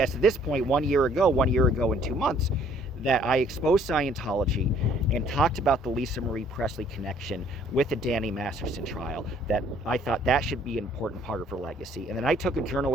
at this point, 1 year ago and 2 months, that I exposed Scientology and talked about the Lisa Marie Presley connection with the Danny Masterson trial, that I thought that should be an important part of her legacy. And then I took a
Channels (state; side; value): normal; both; correlation 0.60